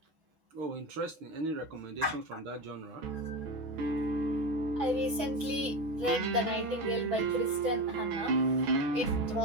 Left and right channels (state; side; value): late; left; 6.1 ms